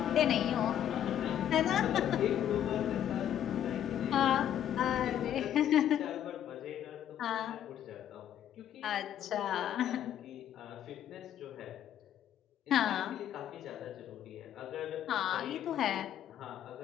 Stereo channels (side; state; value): right; quieter; 10.5 dB